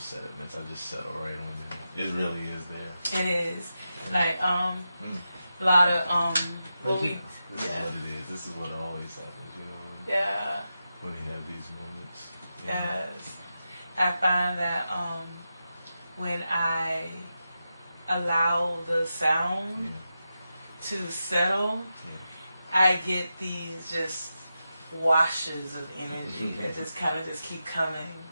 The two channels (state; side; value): inverted; both; correlation -0.89